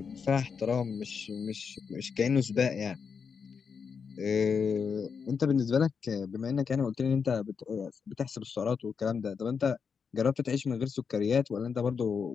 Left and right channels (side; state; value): right; quieter; 6.1 dB